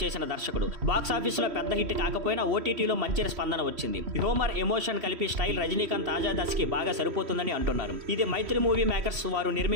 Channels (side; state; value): left; late; 3.0 ms